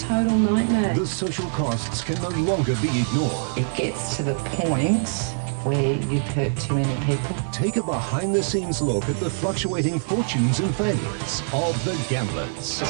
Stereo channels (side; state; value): left; silent; 63 dB below the other